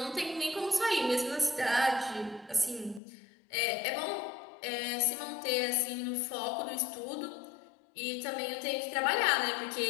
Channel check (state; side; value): drops out; right; at 3.0 s